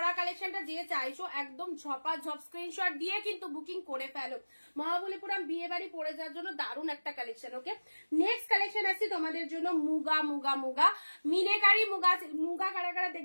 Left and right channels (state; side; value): inverted; both; correlation -1.00